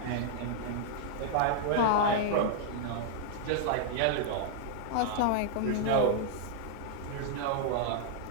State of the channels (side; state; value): both; different; correlation -0.01